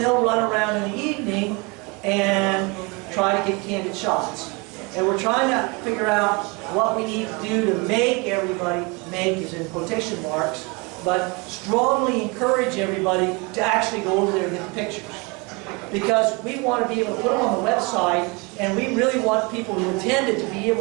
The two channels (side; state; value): left; quieter; 28.5 dB